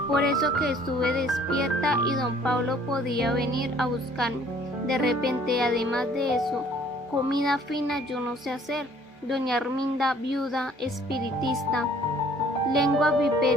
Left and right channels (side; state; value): both; normal; correlation 0.57